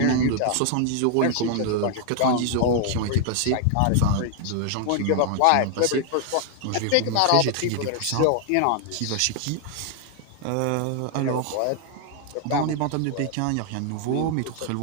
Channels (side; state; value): both; different; correlation 0.00